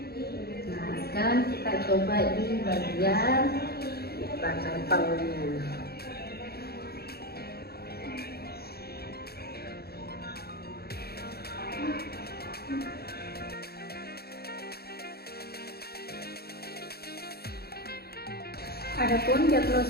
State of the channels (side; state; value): right; late; 0.46 ms